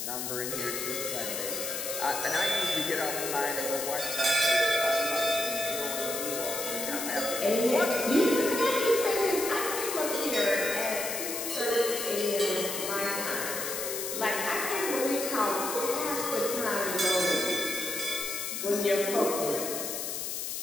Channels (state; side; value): noise; left; hiss, 4 dB below the sound